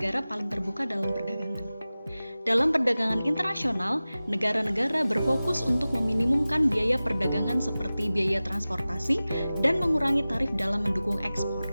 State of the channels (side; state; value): both; inverted; correlation -0.97